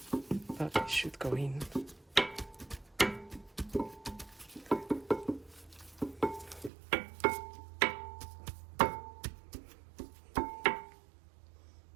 but it should go in.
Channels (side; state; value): left; drops out; at 6.7 s